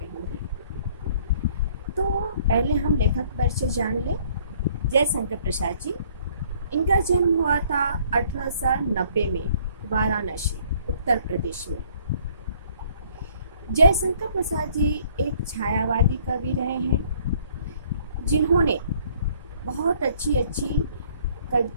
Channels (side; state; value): both; inverted; correlation -0.60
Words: तो पहले हम लेखक परिचय जान लें। जयशंकर प्रसाद जी, इनका जन्म हुआ था 1890 में वाराणसी, उत्तर प्रदेश में। जयशंकर प्रसाद जी एक छायावादी कवि रहे हैं जिन्होंने बहुत अच्छी